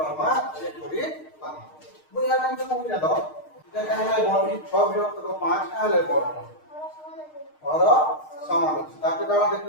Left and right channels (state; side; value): late; right; 6.5 ms